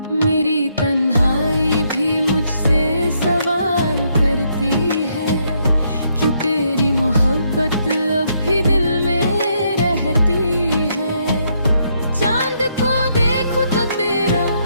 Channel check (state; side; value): inverted; both; correlation -0.75